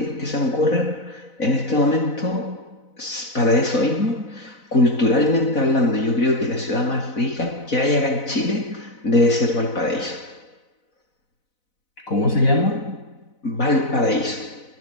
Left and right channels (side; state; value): right; late; 4.0 ms